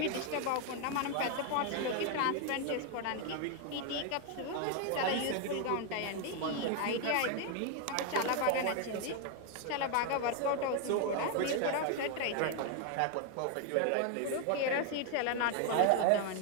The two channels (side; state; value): both; different; correlation 0.01